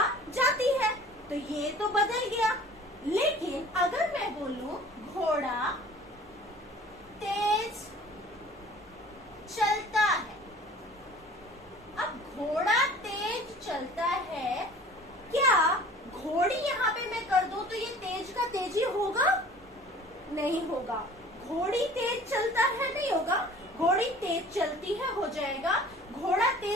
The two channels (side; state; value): both; normal; correlation 0.47